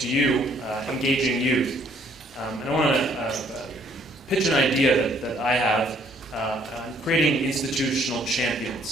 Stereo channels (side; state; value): both; normal; correlation 0.63